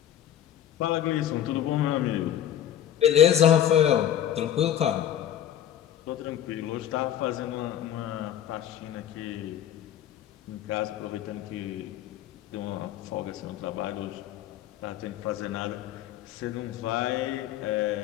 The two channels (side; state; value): right; quieter; 10.8 dB